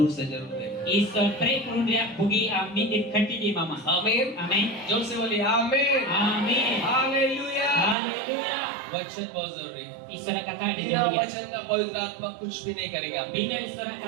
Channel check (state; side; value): drops out; left; at 8.0 s